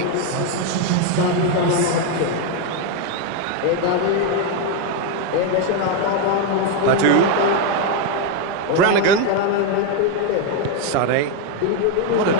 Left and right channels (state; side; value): different; both; correlation 0.02